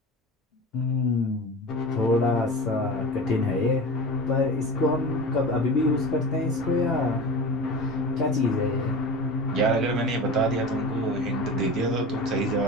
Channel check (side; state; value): both; normal; correlation 0.31